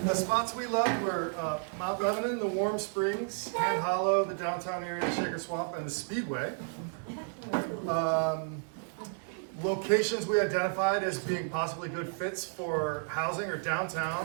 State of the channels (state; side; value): silent; left; 57 dB below the other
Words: The spots we loved were Mount Lebanon, the Warm Springs, Hand Hollow, the downtown area, the Shaker Swamp, and the Speedway. Locations we identified as being possibly good fits for housing or